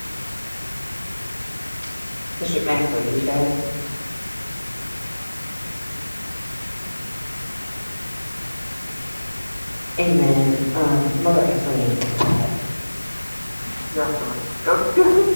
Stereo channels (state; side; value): inverted; both; correlation -1.00